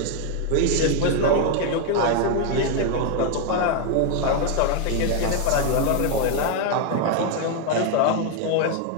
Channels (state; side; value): different; both; correlation 0.01